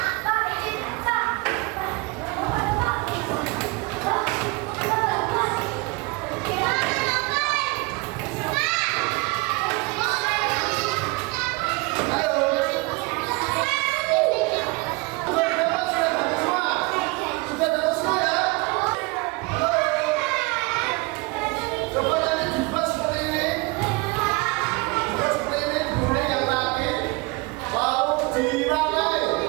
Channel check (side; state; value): left; quieter; 26.1 dB